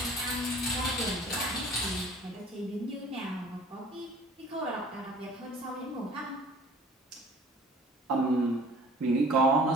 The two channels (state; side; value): normal; both; correlation 0.49